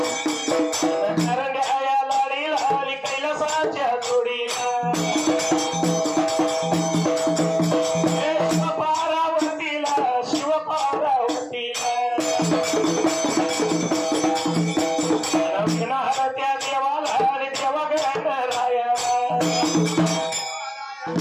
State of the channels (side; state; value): both; identical; correlation 1.00